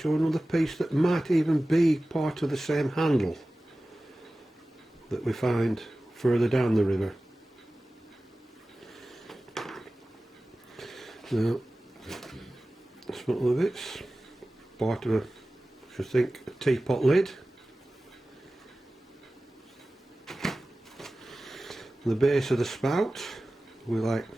another piece that might even be part of the same handle that we find further down the river. Now, that's one of the bits. Part of I should think, a teapot lid. The base of the spout with like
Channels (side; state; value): both; normal; correlation 0.96